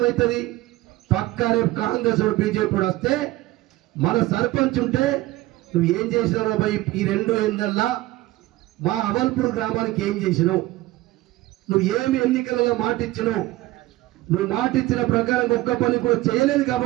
పక్కా రేపు కాంగ్రెస్ బీజేపీ వస్తే మన సర్పంచ్ ఉంటే నువ్వు ఏం చేసినావు బాయ్, ఈ 2 ఏళ్ళల్లో మా అవల్పూర్ గ్రామానికి ఏం చేసినావు, నువ్వు ఏమి ఎన్నికలలో మాట ఇచ్చినావు, నువ్వు మాట ఇచ్చిన ప్రకారం ఒక్క పని కూడా చేయలేదు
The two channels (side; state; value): left; quieter; 17.8 dB